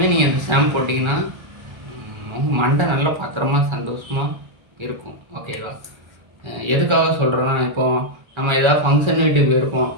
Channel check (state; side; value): late; left; 1.3 ms